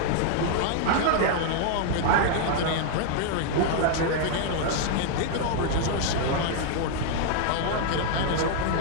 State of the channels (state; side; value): different; both; correlation 0.00